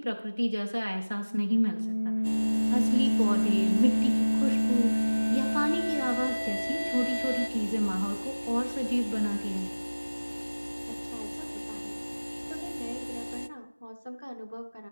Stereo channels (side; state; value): both; inverted; correlation -1.00